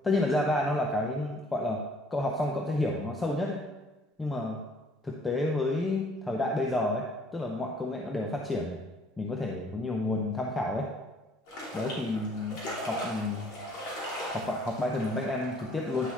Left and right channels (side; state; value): both; normal; correlation 0.59